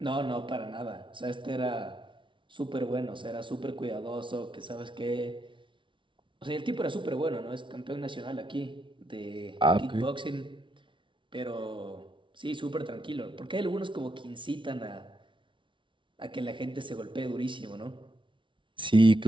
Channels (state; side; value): late; left; 0.24 ms